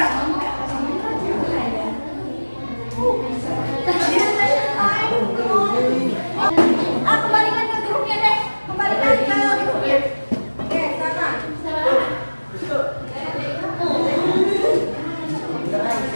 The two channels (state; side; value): inverted; both; correlation -1.00